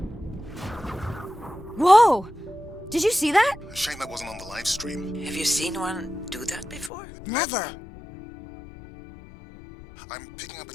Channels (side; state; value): right; drops out; at 6.9 s